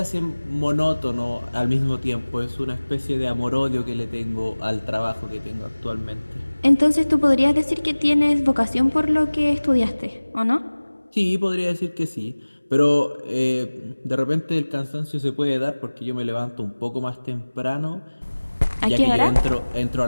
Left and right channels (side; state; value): both; inverted; correlation -1.00